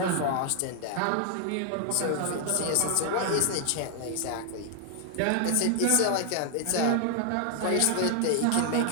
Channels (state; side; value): different; both; correlation 0.00